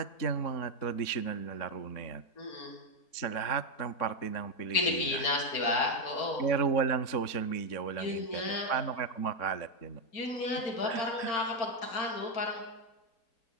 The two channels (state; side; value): late; right; 3.7 ms